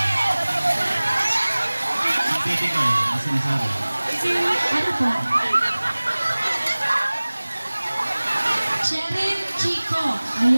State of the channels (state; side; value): inverted; both; correlation -1.00